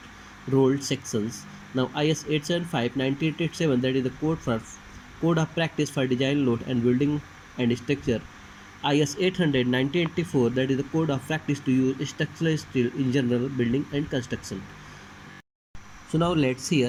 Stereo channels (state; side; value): identical; both; correlation 1.00